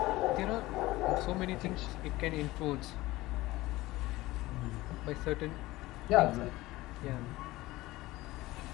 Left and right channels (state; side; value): quieter; right; 18.6 dB